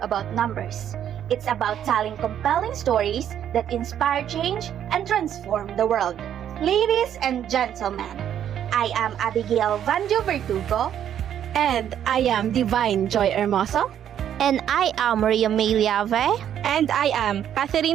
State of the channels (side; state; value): left; quieter; 9.9 dB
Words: numbers. It's about telling compelling stories that inspire change and transform the world. Ladies and gentlemen, I am Abigail Vanjo Verdugo. And I am Divine Joy Hermoso. And I am Maria May Liave. And I am